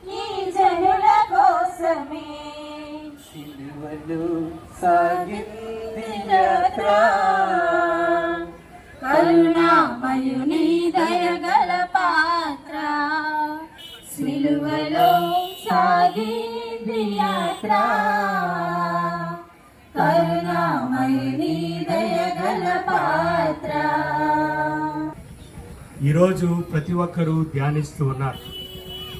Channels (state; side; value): identical; both; correlation 1.00